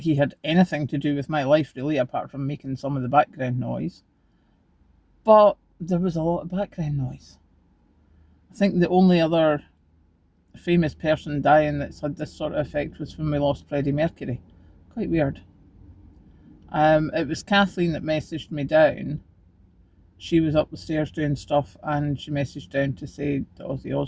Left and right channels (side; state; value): both; identical; correlation 1.00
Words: had anything to do with my life really, apart from making some of the background noise, but there was a lot of background noise. I think the only other famous person dying that's had this sort of effect was when we lost Freddie Mercury. Quite weird. It was Kathleen that messaged me down. She was up the stairs doing stuff and she messaged down to say that Ozzy